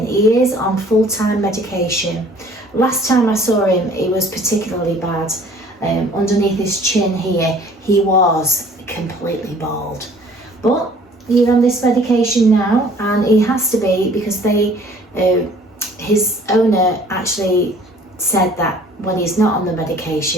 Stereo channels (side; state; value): both; normal; correlation 0.53